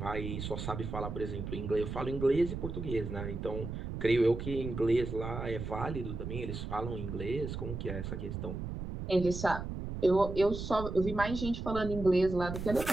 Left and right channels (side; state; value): right; noise; rumble, 6 dB below the sound